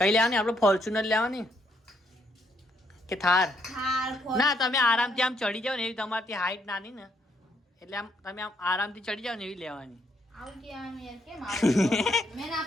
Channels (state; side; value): normal; both; correlation 0.73